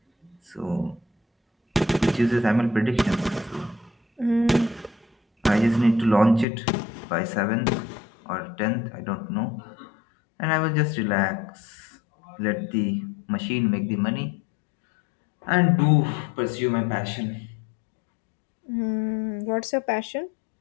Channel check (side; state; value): right; drops out; at 6.5 s